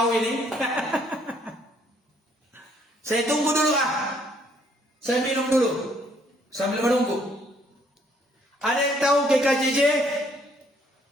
ini? Saya tunggu dulu Saya minum dulu sambil menunggu. Ada yang tahu GKJJ?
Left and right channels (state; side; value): normal; both; correlation 0.66